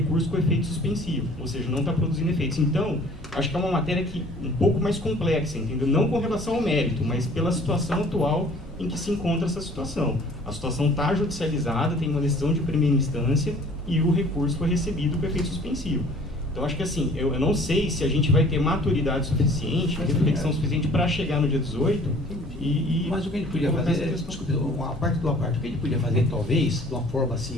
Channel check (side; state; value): both; normal; correlation 0.52